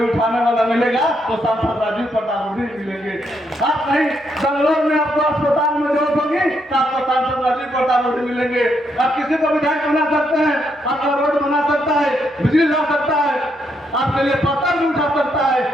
उठाने वाला मिलेगा तो सांसद राजीव प्रताप रूढ़ी मिलेंगे। आप कहीं बेंगलोर में आपको अस्पताल में जरूरत होगी तो आपको सांसद राजीव प्रताप रूढ़ी मिलेंगे। आप किसी को विधायक बना सकते हैं, आपका रोड बना सकता है, बिजली ला सकता है, आपके लिए पत्थर भी उठा सकता है,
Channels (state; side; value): normal; both; correlation 0.77